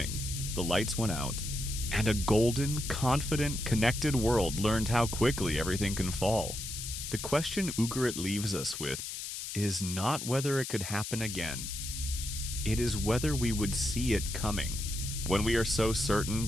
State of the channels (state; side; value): noise; left; hiss, 6 dB below the sound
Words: the lights went out, and a golden, confident, connected world learned how quickly everything can fall. The question Ugarit leaves us with is not whether it could happen again. It is whether we would see it coming, when we are so certain,